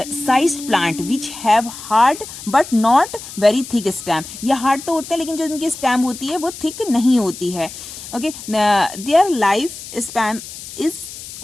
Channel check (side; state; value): left; noise; hiss, 13 dB below the sound